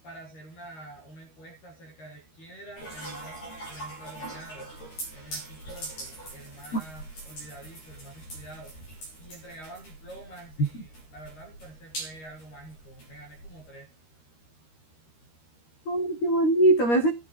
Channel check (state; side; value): late; right; 13 ms